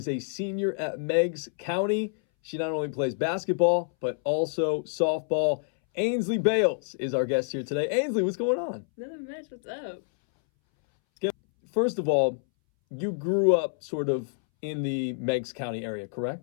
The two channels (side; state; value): right; silent; 60 dB below the other